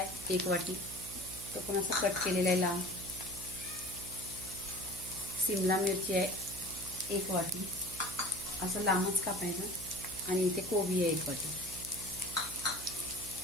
1 वाटी, तो पण असा कट केलेला आहे लांब। शिमला मिरची आहे 1 वाटी, असं लांबच कापायचं। आणि इथे कोबी आहे 1 वाटी।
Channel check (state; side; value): noise; right; hum, 13 dB below the sound